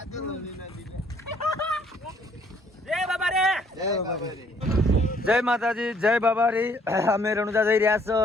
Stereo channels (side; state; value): both; normal; correlation 0.64